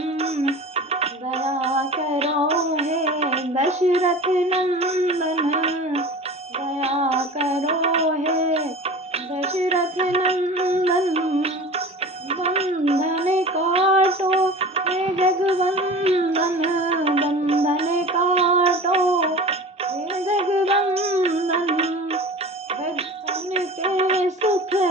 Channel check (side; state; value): both; normal; correlation 0.36